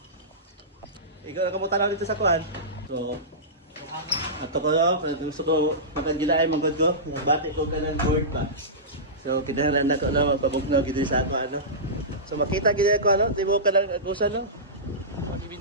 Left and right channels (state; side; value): normal; both; correlation -0.18